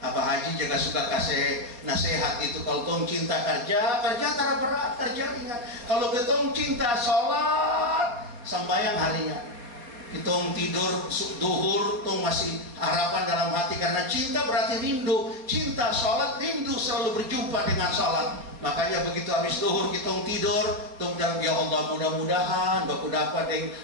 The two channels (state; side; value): late; left; 4.2 ms